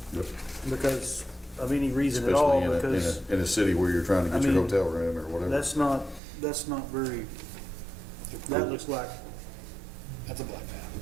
Yep. because of any reason at all, Especially because in a city where you're trying to get I your mean, hotel room or whatever. that's not very, that looks like That's a black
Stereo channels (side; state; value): left; drops out; at 6.2 s